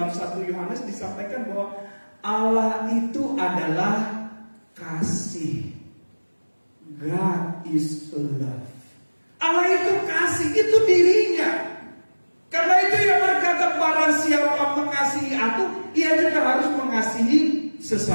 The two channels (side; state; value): both; inverted; correlation -1.00